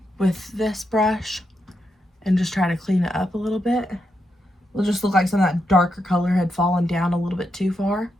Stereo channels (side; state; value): both; normal; correlation 0.83